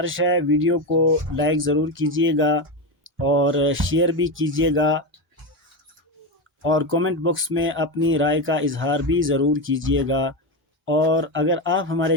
ہے، ویڈیو کو لائک ضرور کیجیے گا اور شیئر بھی کیجیے گا، اور کومنٹ باکس میں اپنی رائے کا اظہار بھی ضرور کیجیے گا۔ اور اگر آپ ہمارے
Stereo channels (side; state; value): both; normal; correlation 0.14